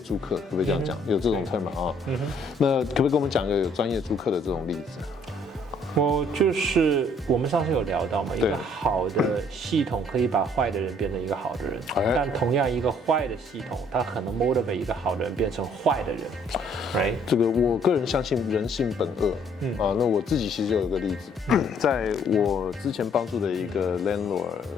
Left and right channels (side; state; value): both; normal; correlation 0.63